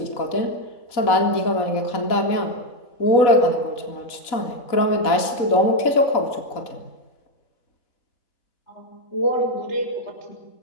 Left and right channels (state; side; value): late; right; 4.1 ms